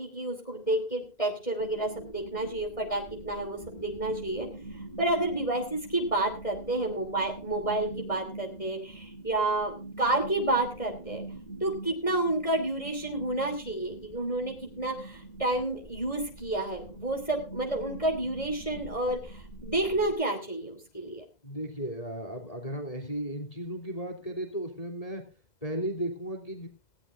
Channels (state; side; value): late; right; 1.6 ms